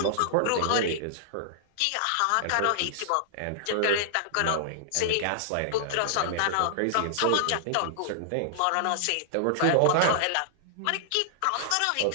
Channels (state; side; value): different; both; correlation -0.01